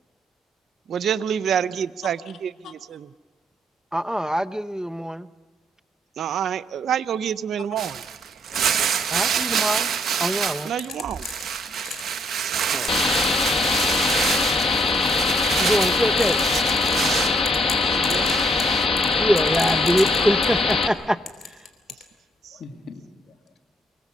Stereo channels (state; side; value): normal; both; correlation 0.69